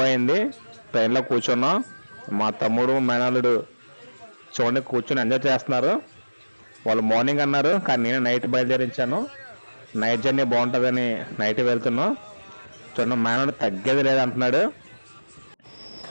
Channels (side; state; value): both; inverted; correlation -1.00